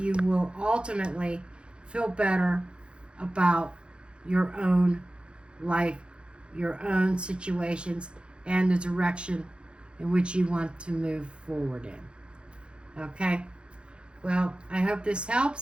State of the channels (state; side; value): late; left; 0.056 ms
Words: will ultimately feel better about your own life, your own situations, and the direction in which you want to move forward in. Okay? Well, I hope this